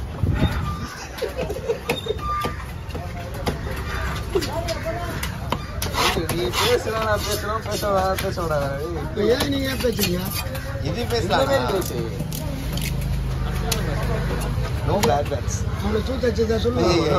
நீ பேசுறேன் நான் பேசுறோம் பேச விடாது. ஏன் நீங்க ஏன் பேசுறீங்க? இது பேசலாம். No bad bats. அவளை சூத்த வச்சதா சொல்லுங்க.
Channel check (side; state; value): both; identical; correlation 1.00